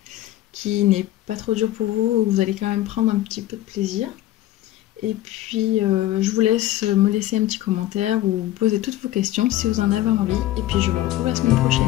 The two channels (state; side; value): quieter; right; 14.4 dB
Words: qui n'est pas trop dur pour vous, où vous allez quand même prendre un petit peu de plaisir. Et puis je vous laisse me laisser un petit commentaire ou poser toutes vos questions si vous en avez envie. Et puis je vous retrouve la semaine